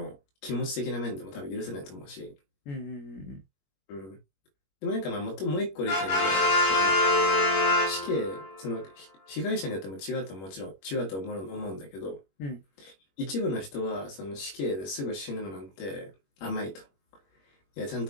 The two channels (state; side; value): late; right; 21 ms